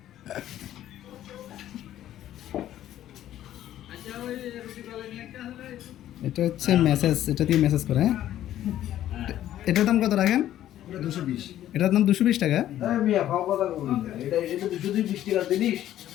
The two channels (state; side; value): quieter; right; 12.4 dB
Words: এটা হচ্ছে মেসেজ, এটা দিয়ে মেসেজ করে। হ্যাঁ, এটার দাম কত রাখেন? এটা 220। এটার দাম 220 টাকা। মিয়া খাওয়া কথা বলি না। এটা 220 টাকা জিনিস।